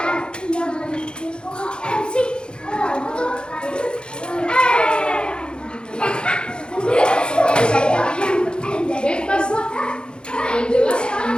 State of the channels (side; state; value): right; late; 0.051 ms